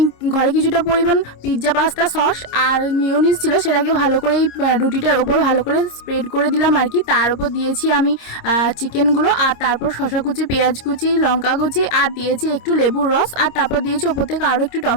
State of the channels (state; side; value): late; right; 26 ms